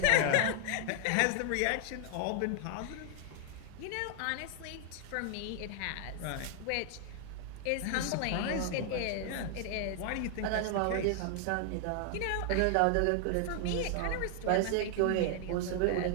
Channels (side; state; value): both; different; correlation 0.00